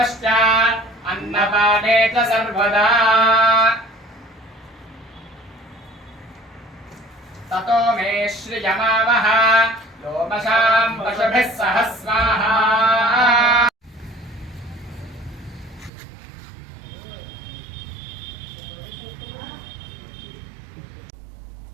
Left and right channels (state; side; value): drops out; left; at 15.9 s